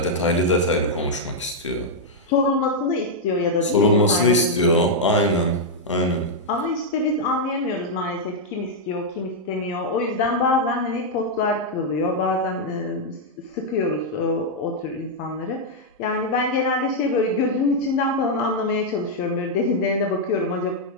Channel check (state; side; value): normal; both; correlation -0.04